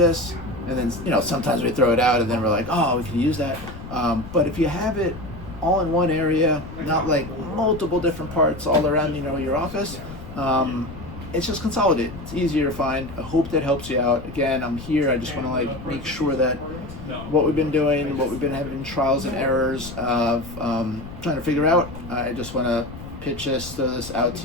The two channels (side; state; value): left; noise; rumble, 13 dB below the sound